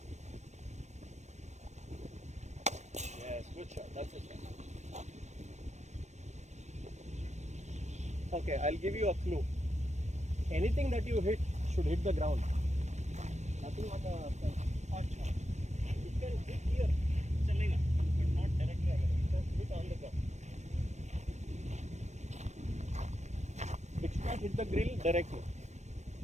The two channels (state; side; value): late; left; 0.34 ms